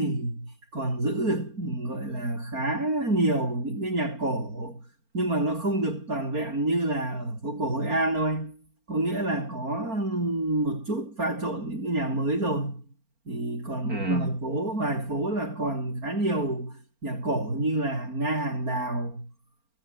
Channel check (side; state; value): left; late; 4.4 ms